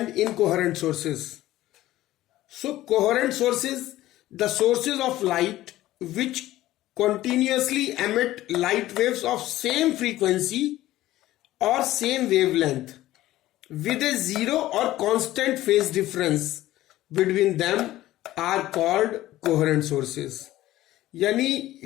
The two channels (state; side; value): quieter; right; 15.5 dB